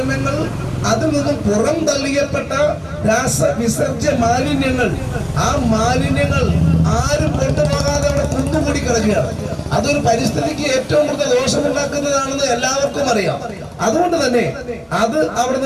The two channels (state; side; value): identical; both; correlation 1.00